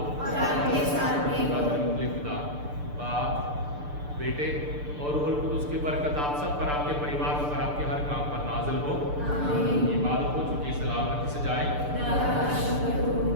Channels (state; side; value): late; left; 6.8 ms